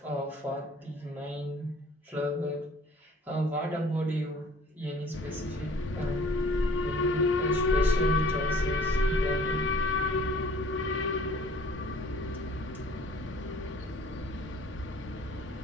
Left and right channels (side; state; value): both; normal; correlation 0.51